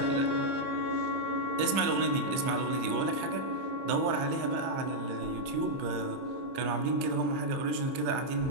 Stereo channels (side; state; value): left; late; 30 ms